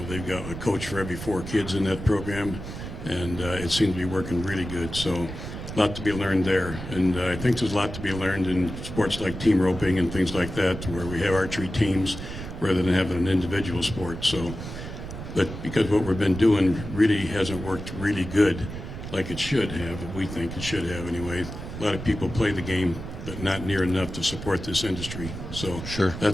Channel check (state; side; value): noise; right; rumble, 9 dB below the sound